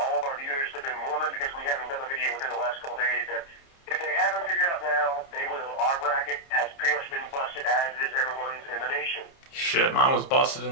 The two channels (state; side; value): late; right; 29 ms